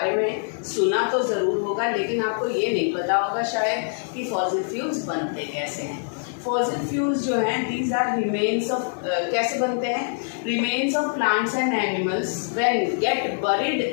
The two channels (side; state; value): right; silent; 62 dB below the other